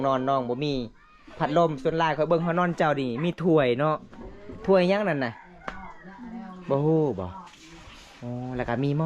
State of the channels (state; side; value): identical; both; correlation 1.00